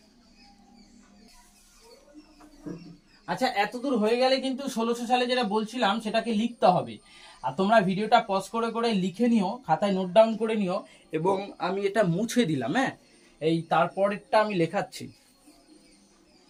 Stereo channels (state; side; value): identical; both; correlation 1.00